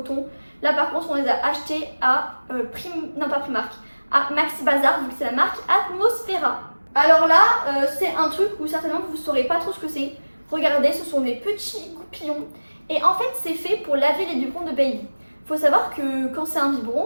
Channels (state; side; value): inverted; both; correlation -1.00